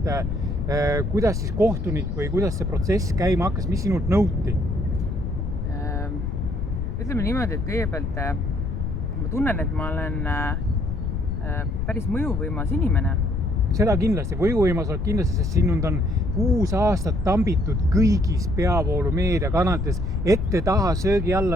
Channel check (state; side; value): noise; left; rumble, 2 dB below the sound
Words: kuidas siis kohtunik või kuidas see protsess käima hakkas, mis sinult nõuti? Ütleme niimoodi, et kõigepealt ma tunnen, et ma olen päris mõjuvõimas inimene. Seda kindlasti, võjuvõimas oled kindlasti, sest sinund on 6 aastat tambitud kõigis peavoolu meediakanalites, ette, taha, söögi